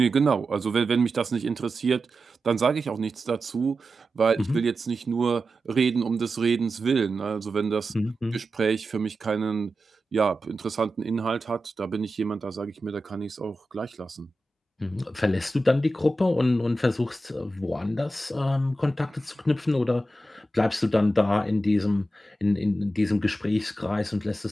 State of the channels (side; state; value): both; normal; correlation 0.91